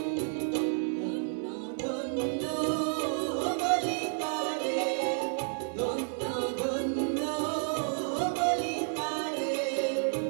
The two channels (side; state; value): left; silent; 57 dB below the other